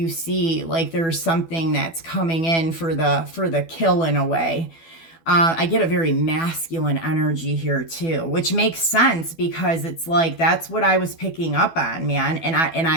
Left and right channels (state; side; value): late; right; 12 ms